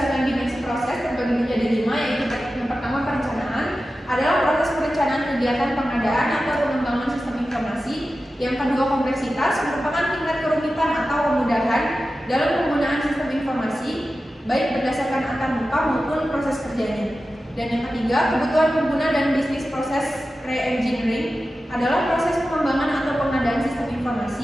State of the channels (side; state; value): both; normal; correlation 0.93